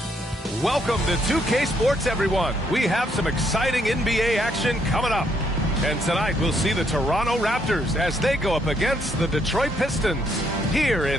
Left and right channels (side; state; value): both; normal; correlation 0.72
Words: Welcome to 2K Sports, everyone. We have some exciting NBA action coming up. And tonight we'll see the Toronto Raptors as they go up against the Detroit Pistons here